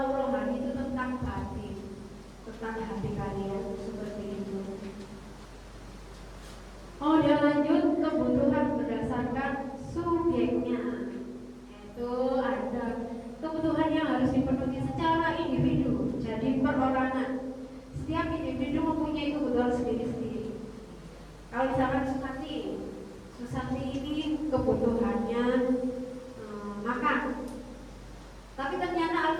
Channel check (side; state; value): both; identical; correlation 1.00